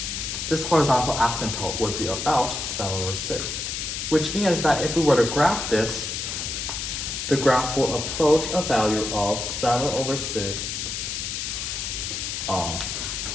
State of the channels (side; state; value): left; noise; hiss, 4 dB below the sound